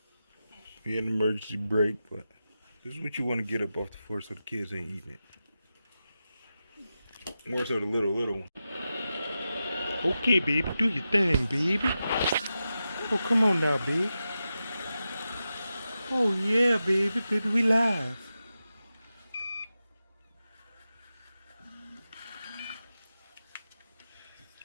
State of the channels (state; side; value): inverted; both; correlation -0.91